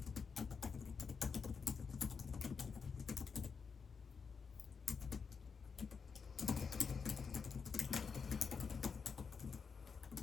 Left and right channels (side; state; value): right; quieter; 5.6 dB